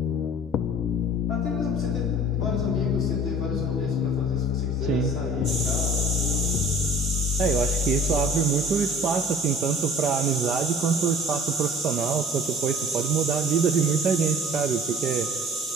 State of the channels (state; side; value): normal; both; correlation 0.47